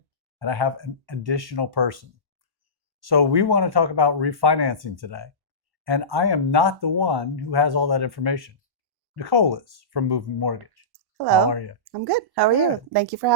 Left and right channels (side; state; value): left; late; 1.1 ms